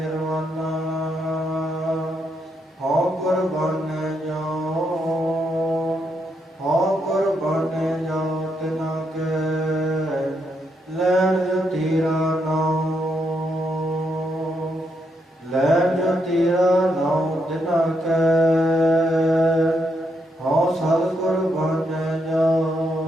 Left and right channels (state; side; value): normal; both; correlation 0.79